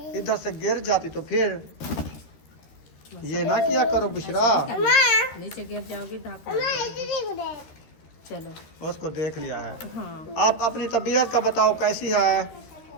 इधर से गिर जाती तो फिर ये ना किया करो बुशरा। नीचे गिर जाओगी धाका। चलो उसको देख लिया है। हाँ आप अपनी तबीयत का बताओ कैसी है?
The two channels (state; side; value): late; right; 13 ms